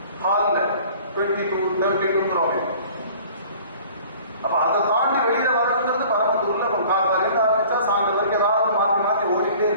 ஹால்ல 22-32 அப்ப அதை தாண்டி வெளியில வரணுங்கிறது பரமத்தூர்ல காலையில ஆரம்பிச்சா சாயந்தரம் வரைக்கும் ஏதாவது மாற்றி மாற்றி ஓடிக்கிட்டே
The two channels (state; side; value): inverted; both; correlation -0.49